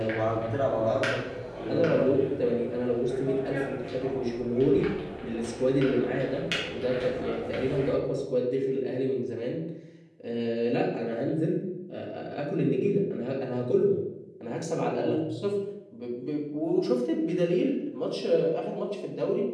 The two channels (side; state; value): both; identical; correlation 1.00